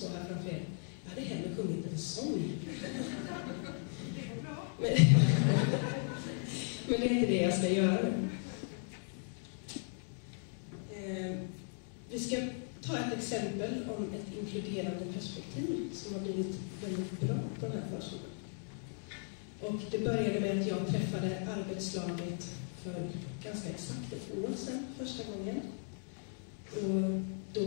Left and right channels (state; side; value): silent; right; 53 dB below the other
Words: här framför er. Jag hade hellre sjungit en sång. Det går bra. Men det är inte det jag ska göra nu. Vi ska ta ett exempel om ett inkluderande perspektiv som har blivit väldigt bra på den här förskolan. Och det började med att jag träffade arbetslaget för ganska exakt ett år sedan första gången. Och då